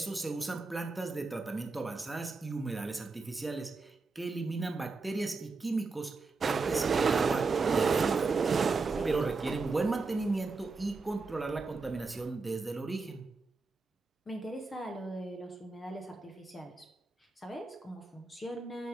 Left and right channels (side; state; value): left; quieter; 4.0 dB